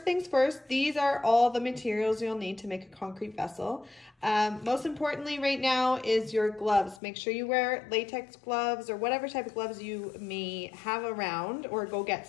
things first, these are all the materials you'll need to make a concrete vessel. Most importantly right now is your gloves. Make sure you wear latex gloves or whatever type of gloves you may have around, or go get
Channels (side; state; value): right; drops out; at 7.0 s